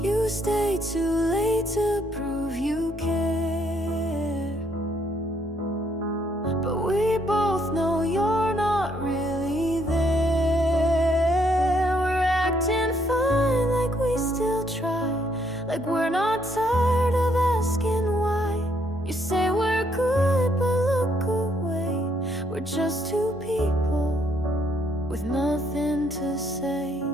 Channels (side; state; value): both; normal; correlation 0.71